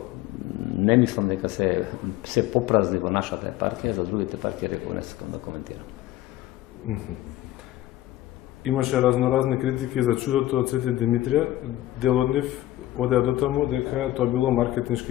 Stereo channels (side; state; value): right; quieter; 15.1 dB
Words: не мислам дека се попразни во нашата епархија, за другите епархии реков не сакам да коментирам. Имаше разноразни критики за чудото од Свети Димитрија. Дел од нив одеа до таму дека тоа било